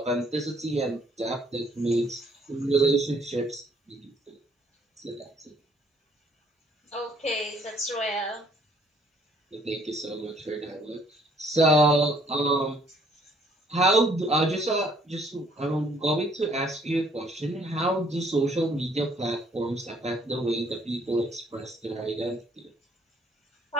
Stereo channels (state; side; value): normal; both; correlation 0.64